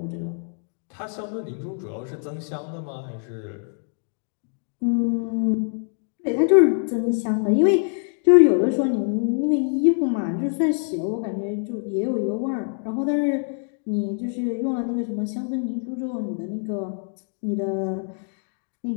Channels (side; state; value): right; silent; 57 dB below the other